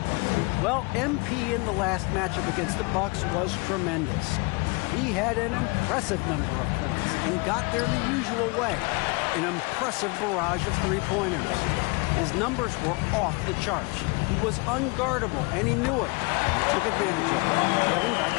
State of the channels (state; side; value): quieter; right; 28.3 dB